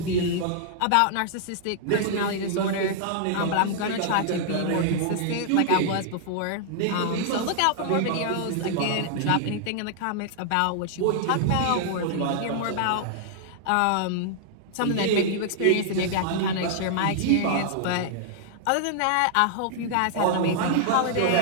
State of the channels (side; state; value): both; different; correlation -0.01